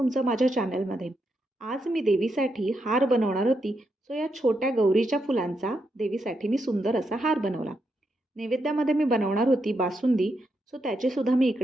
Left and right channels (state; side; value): normal; both; correlation 0.82